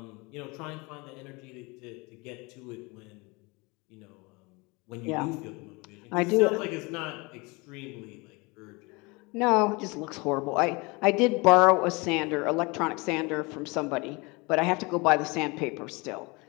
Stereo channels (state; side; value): quieter; right; 26.5 dB